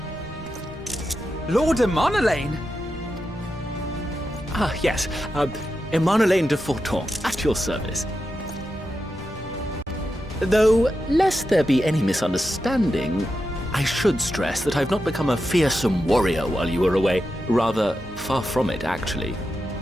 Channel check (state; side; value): normal; both; correlation 0.89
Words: Lord Emanolain! Ah, yes. Emanolain de Forton, at your service. Though, lest there be any misunderstanding, I should stress that I've not become a fearsome warrior while you were away. Rather, far from it, actually.